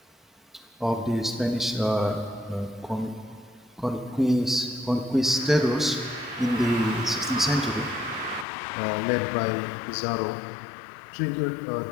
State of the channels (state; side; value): drops out; right; at 8.5 s